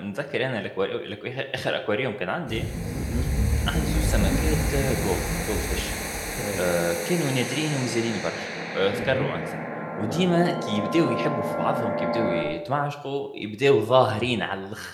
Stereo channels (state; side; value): identical; both; correlation 1.00